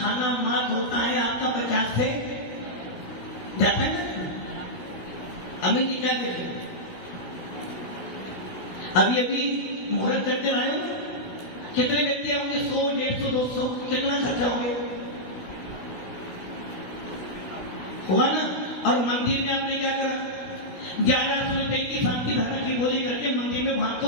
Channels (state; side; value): late; right; 16 ms